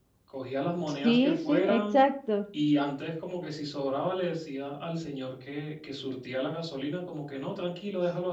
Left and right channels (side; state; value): both; identical; correlation 1.00